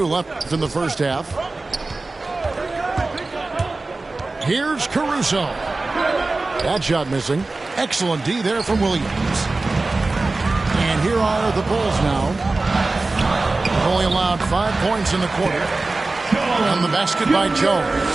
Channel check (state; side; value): quieter; left; 3.4 dB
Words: left in the first half. Here's Caruso. That shot missing. Excellent D there from Williams. And here are the Bulls now. Only allowed 5 points in the quarter. And the basket by